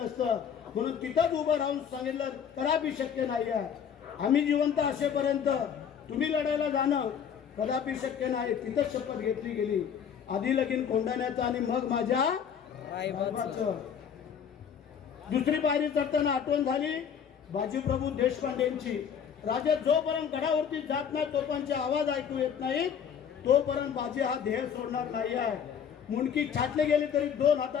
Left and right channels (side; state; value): right; quieter; 7.8 dB